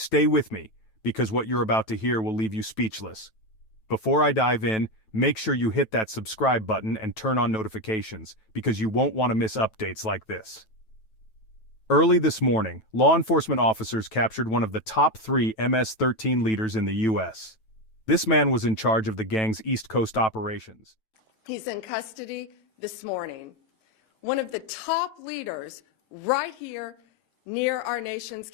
with me, because what you're about to hear will leave you speechless. Before I dive in, make sure you hit that subscribe button and turn on notifications, because you won't want to miss updates like this. Early this morning, law enforcement officers captured one of the top 3 MS-13 leaders in the U.S. This man was in charge of the gang's East Coast operations. He's in custody this morning. One of the top leaders right here near our nation's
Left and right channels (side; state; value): right; late; 9.2 ms